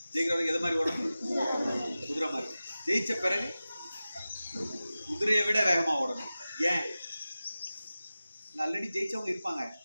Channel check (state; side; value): inverted; both; correlation -0.95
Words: ஜெயிக்கிற வரைக்கும் எதை மாதிரி ஓடணும்? குதிரை மாதிரி. ஜெயிச்ச பிறகு குதிரையை விட வேகமாக ஓடணும். ஏன்? ஆல்ரெடி ஜெயிச்சவங்க இருப்பாங்க.